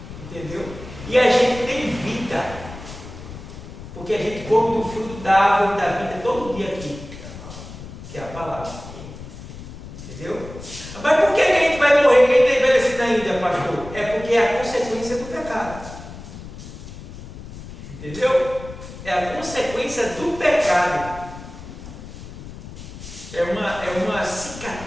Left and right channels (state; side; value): noise; left; rumble, 13 dB below the sound